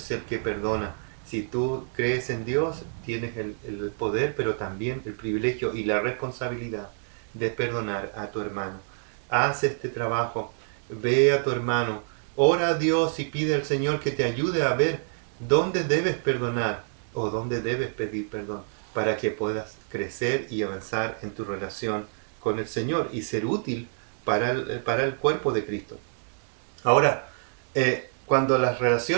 el que perdona. Si tú crees en Dios, tienes el poder, pero también el privilegio y la responsabilidad de perdonar a tu hermano. Haz este trabajo, ve a tu hermano, ora a Dios y pide al Señor que te ayude a ver dónde debes perdonar o dónde debes pedir perdón para que puedas crecer y avanzar en tu relación con el Señor y ser útil para el cuerpo de Cristo. Ahora, cuando las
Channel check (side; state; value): left; silent; digital silence